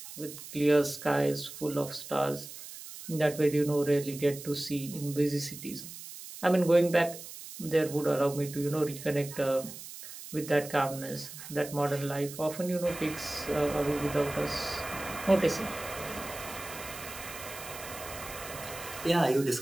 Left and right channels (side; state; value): right; noise; hiss, 13 dB below the sound